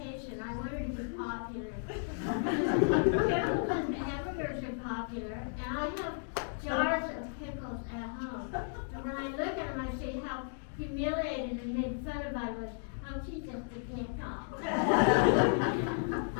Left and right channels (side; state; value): right; silent; digital silence